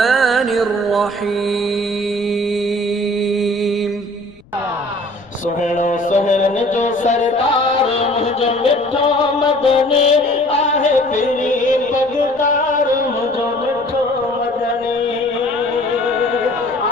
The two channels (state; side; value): noise; left; rumble, 28 dB below the sound